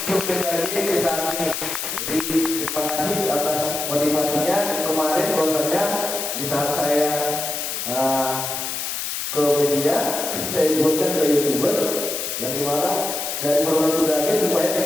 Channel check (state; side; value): noise; left; hiss, 3 dB below the sound